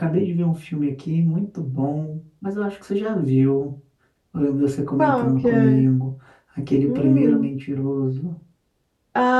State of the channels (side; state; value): both; identical; correlation 1.00